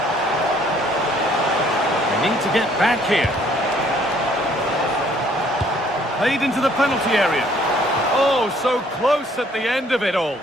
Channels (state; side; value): normal; both; correlation 0.61